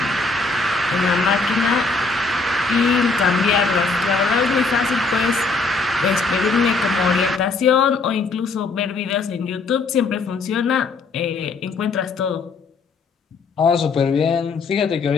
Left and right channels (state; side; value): quieter; right; 4.0 dB